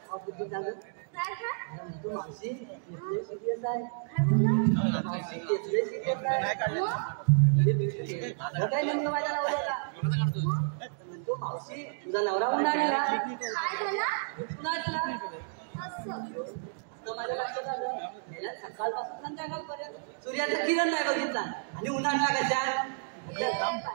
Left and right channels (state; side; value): silent; left; digital silence